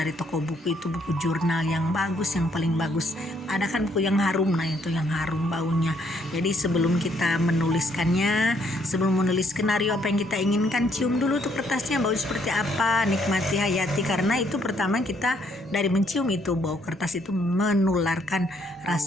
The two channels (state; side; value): normal; both; correlation 0.69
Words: toko buku, itu buku jurnal yang bagus, yang paling bagus. Ada kan buku yang harum, nah itu yang harum baunya. Jadi sebelum kita menuliskannya, sebelum menulis skenario apa yang kita inginkan, cium dulu tuh kertasnya bau seperti apa, nikmati, hayati. Karena itu pertama kita dari mencium itu bau kertas itu menularkan